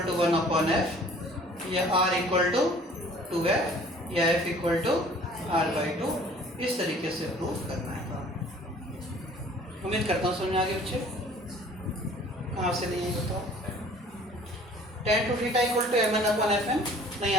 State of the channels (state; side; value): normal; both; correlation 0.52